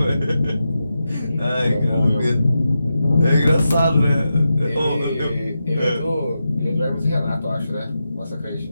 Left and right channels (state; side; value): inverted; both; correlation -0.88